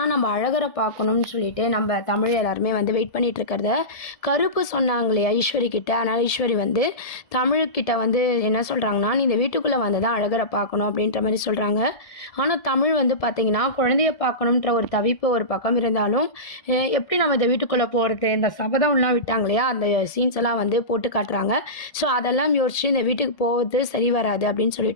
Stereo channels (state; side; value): late; right; 1.7 ms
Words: நம்ம அழகரை பார்க்கணும்னு சொல்லிட்டு நம்ம தமிழ் எல்லாருமே வந்து வெயிட் பண்ணிகிட்ருக்கிறத கருப்பு சொன்னாங்களே ஐஸ்வரி கிட்ட. அதனால் ஐஸ்வரி வந்து தமிழ்கிட்ட வந்து என்ன சொல்கிறாங்கன்னா, "நீ இந்த வீட்டுக்குள்ளே வந்து தான் அழகரை பார்க்கணும்" அப்படின்ற மாதிரி சொல்கிறாங்க. ஆனால் தமிழ் வந்து பார்த்திங்கன்னா, குழந்தைய பார்க்கணுன்ற ஒரு தவிப்பு ஒரு பக்கம் இருந்தாலும், எப்படி நம்ம இந்த வீட்டுக்குள்ளே போகிறது, இந்த சபதம்லாம் விட்டாங்க இல்லையா, அந்த சீன்ஸ் எல்லாம் வந்து போட்டு காட்டுறாங்க. ஸோ அதெல்லாம் யோசிச்சு இந்த வீட்டுக்கு போவது சரி வராது அப்படின்னு